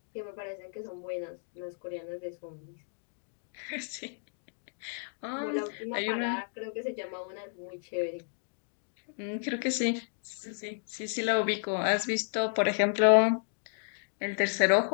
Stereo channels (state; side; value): silent; right; digital silence